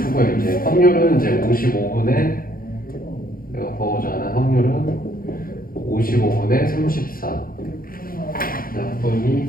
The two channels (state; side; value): late; right; 0.42 ms